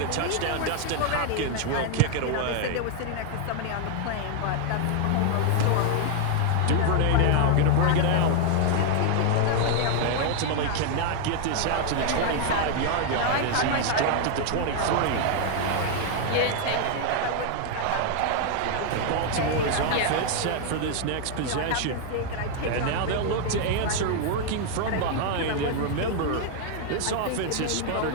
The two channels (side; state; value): both; different; correlation 0.00